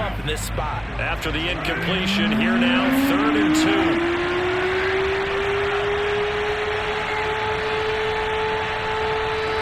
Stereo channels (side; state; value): both; identical; correlation 1.00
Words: in this spot. After the incompletion, here now, 3rd and